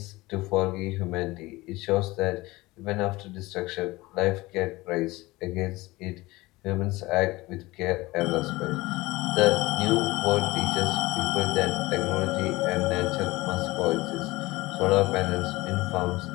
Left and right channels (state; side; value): quieter; right; 20.5 dB